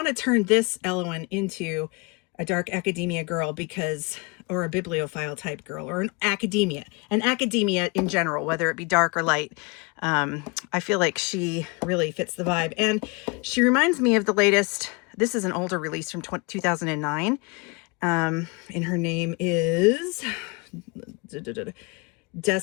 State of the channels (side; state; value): right; quieter; 29.2 dB